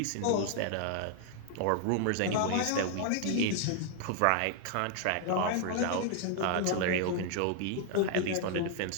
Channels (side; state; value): both; different; correlation 0.00